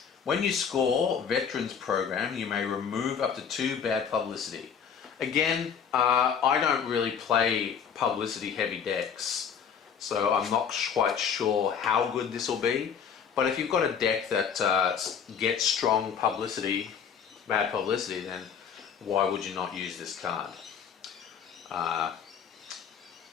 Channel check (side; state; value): right; quieter; 7.3 dB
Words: When you score Veterans Program, you may remove up to 2 bad publicity. Again, I don't really play publicity heavy decks, so I'm not quite sure how good this will be. But if you've got a deck that gets strong publicity, bad publicity, then why would you not use this card?